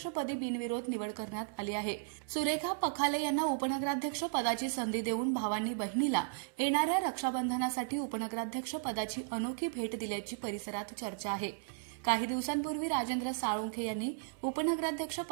बिनविरोध निवड करण्यात आली आहे। सुरेखा पखाले यांना उपनगराध्यक्ष पदाची संधी देऊन भावांनी बहिणीला येणाऱ्या रक्षाबंधनासाठी उपनगराध्यक्ष पदाची अनोखी भेट दिल्याची परिसरात चर्चा आहे। काही दिवसांपूर्वी राजेंद्र साळुंखे यांनी उपनगराध्यक्ष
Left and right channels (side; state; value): left; silent; digital silence